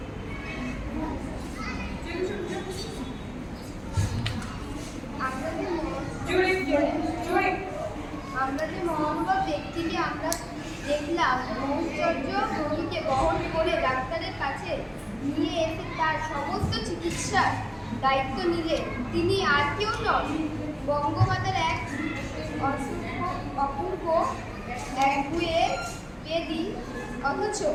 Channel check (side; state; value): both; identical; correlation 1.00